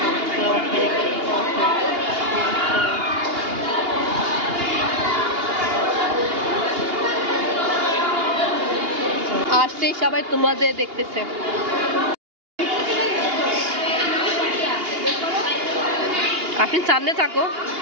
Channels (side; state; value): left; late; 2.8 ms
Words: আসতেই সবাই তোমাদের দেখতেছে। আপনি সামনে থাকো।